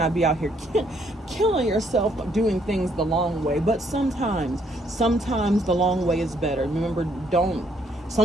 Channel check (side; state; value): both; normal; correlation 0.69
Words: be out here killing yourself doing things the long way. But sometimes the long way is better. Remember,